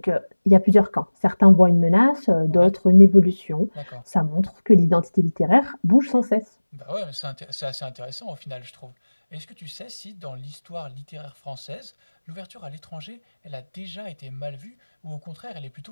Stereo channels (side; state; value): both; inverted; correlation -1.00